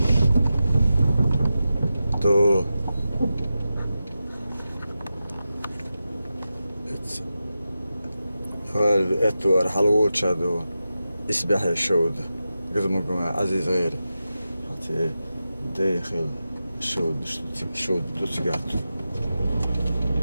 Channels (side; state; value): both; inverted; correlation -0.91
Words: تو اتوار حلوات شادو اسبح الشود قدمكم عزيز غيري حتى داخل الشود دوتسقات